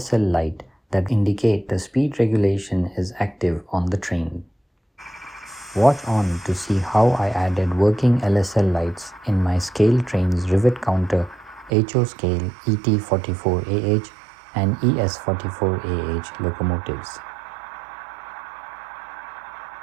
light that indicate the speed regulation is active on the train. Watch on to see how I added working LSL lights in my ScaleTrains Rivet counter HO scale ET44AH and ES44AH locomotives.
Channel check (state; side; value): drops out; left; at 11.7 s